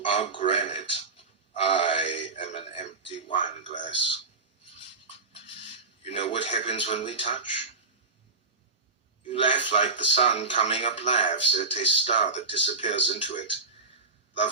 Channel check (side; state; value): left; quieter; 4.2 dB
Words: are granite. I am an empty wine glass. You know what happens when we touch? You laugh like the sun coming up laughs at a star that disappears into it.